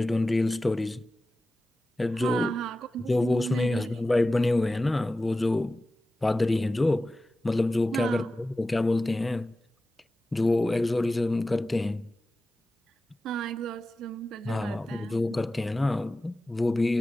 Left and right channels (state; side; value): normal; both; correlation 0.95